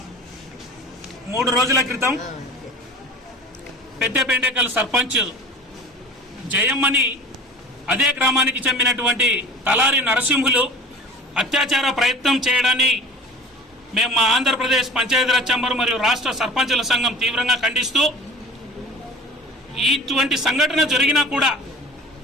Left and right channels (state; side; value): normal; both; correlation 0.41